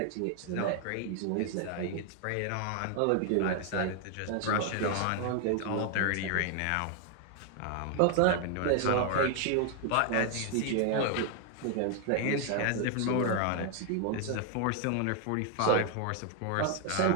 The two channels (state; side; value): different; both; correlation 0.00